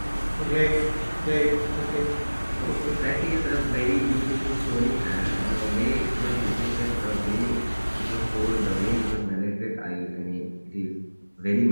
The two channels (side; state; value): both; inverted; correlation -1.00